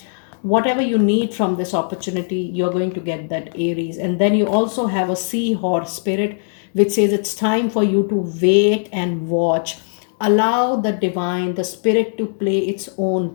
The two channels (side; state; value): right; silent; digital silence